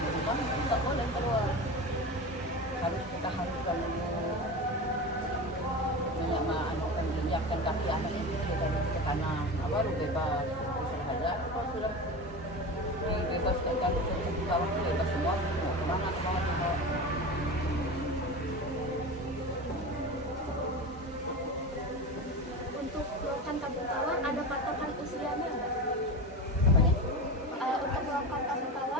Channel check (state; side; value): normal; both; correlation 0.26